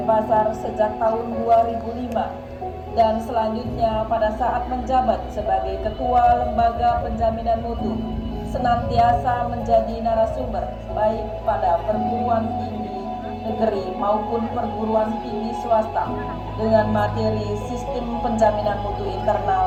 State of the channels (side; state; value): both; identical; correlation 1.00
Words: sejak tahun 2005. Dan selanjutnya pada saat menjabat sebagai Ketua Lembaga Penjaminan Mutu, senantiasa menjadi narasumber baik pada perguruan tinggi negeri maupun perguruan tinggi swasta dengan materi sistem penjaminan mutu